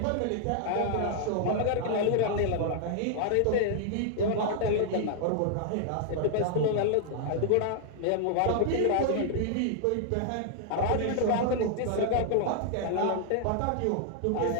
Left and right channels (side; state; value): both; different; correlation -0.01